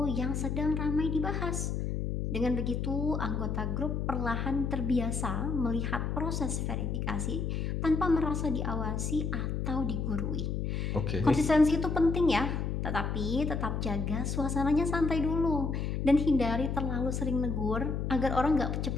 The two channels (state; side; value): noise; left; hum, 1 dB below the sound